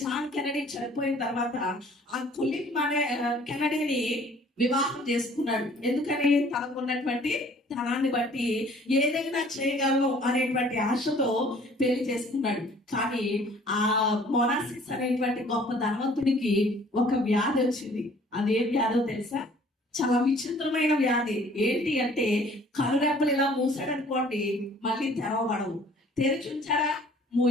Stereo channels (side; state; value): both; normal; correlation 0.55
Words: జాన్ కెనడీ చనిపోయిన తర్వాత ఆ కులిన్ అనే కెనడీని వివాహం చేసుకున్నాడు. ఎందుకని? తనకున్నటువంటి ధనాన్ని బట్టి ఏదైనా చేయగలను అనేటువంటి ఆశతో పెళ్లి చేసుకున్నాడు. కానీ ఆ మోనాసిస్ అనేటువంటి గొప్ప ధనవంతుడికి ఒక వ్యాధి వచ్చింది. అదే వ్యాధో తెలుసా? చాలా విచిత్రమైన వ్యాధి. ఏంటి అంటే, కనురెప్పలు ఇలా మూసాడనుకోండి, మళ్ళీ తెరవబడవు, తెరిచి ఉంచారా